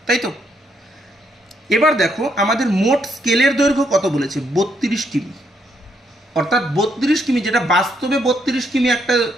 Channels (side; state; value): both; normal; correlation 0.74